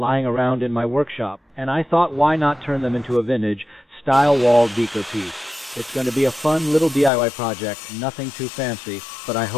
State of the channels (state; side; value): drops out; right; at 7.1 s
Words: around in my workshop, and I thought why not turn them into a vintage style wall decor piece. It's going to be a fun little DIY project, nothing too fancy, but I